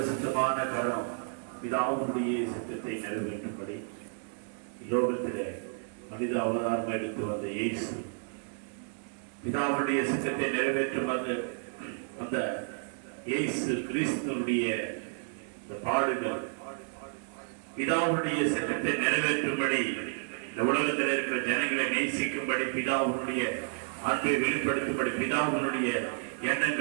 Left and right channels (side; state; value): left; silent; 57 dB below the other